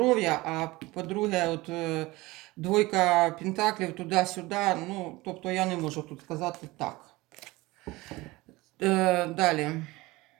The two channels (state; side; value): quieter; left; 20.8 dB